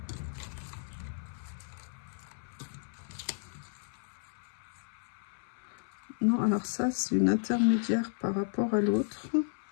Non, alors ça, c'est une intermédiaire par rapport à l'autre.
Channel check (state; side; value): silent; right; 55 dB below the other